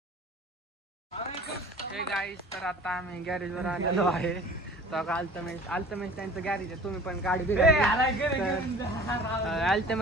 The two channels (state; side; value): normal; both; correlation 0.45